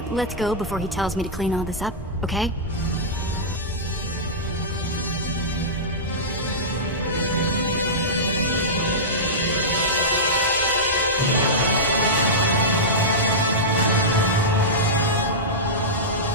let's go before he tells me to clean all this up, okay?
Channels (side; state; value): both; normal; correlation -0.14